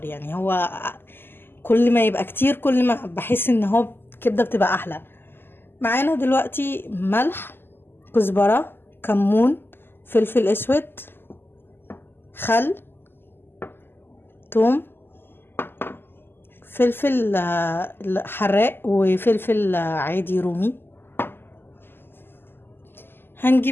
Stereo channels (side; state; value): right; late; 0.10 ms